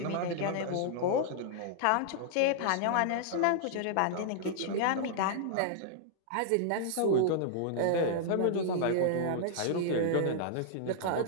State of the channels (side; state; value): both; different; correlation -0.01